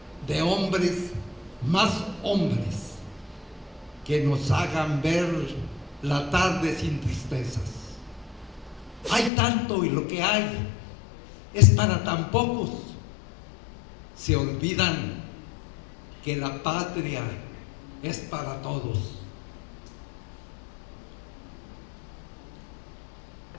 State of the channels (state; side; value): drops out; right; at 9.3 s